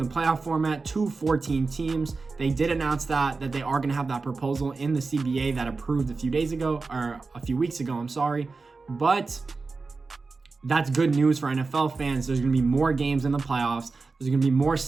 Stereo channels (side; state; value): left; quieter; 4.1 dB